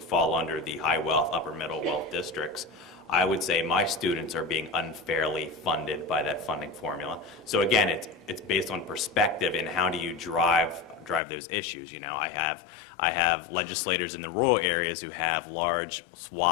under the high wealth, upper middle wealth districts, I would say my students are being unfairly funded by that funding formula. So again, it's based on perspective and how do you drive those issues. You know, I have legislators in the rural areas who have large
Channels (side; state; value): right; drops out; at 11.2 s